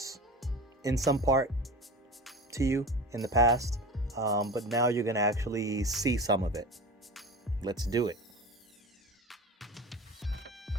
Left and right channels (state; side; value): normal; both; correlation 0.32